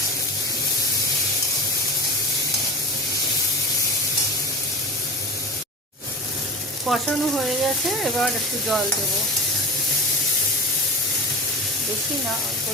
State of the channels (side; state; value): both; normal; correlation 0.31